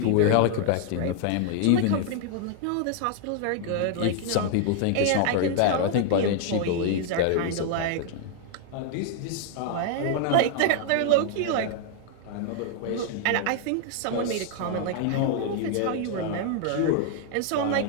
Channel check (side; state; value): both; different; correlation 0.00